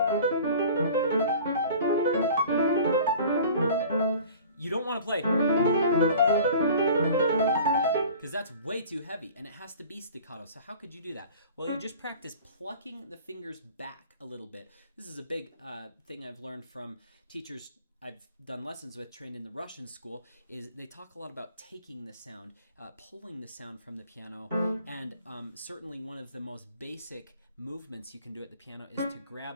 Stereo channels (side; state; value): both; inverted; correlation -0.45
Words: you don't want to play, because that's way too heavy and it has to be staccato. So how could you do that? Well, you just practice plucking the fingers back a little bit. This is a big thing I've learned from teachers I've done lessons with, trained in the Russian school, is they talk a lot about taking the sound, pulling the sound from the piano, and certainly one of the most basic movements you can do at the piano is to